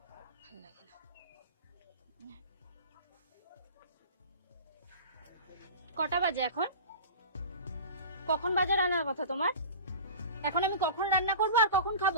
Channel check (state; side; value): inverted; both; correlation -0.35